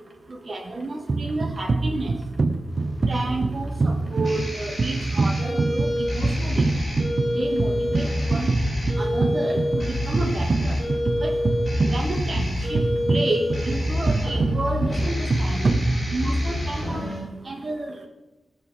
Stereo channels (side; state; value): both; normal; correlation 0.94